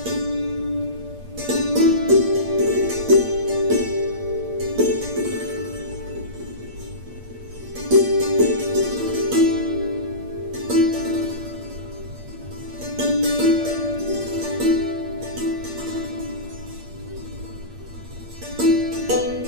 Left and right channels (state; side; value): late; left; 8.6 ms